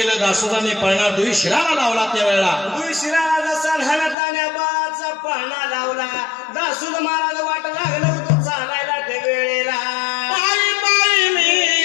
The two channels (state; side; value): drops out; right; at 4.2 s